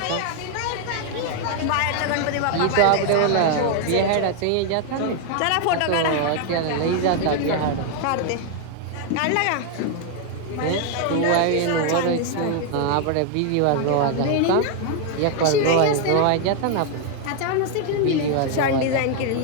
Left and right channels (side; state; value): both; different; correlation 0.00